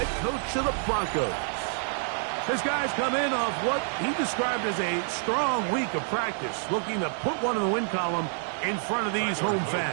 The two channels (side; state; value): left; silent; 59 dB below the other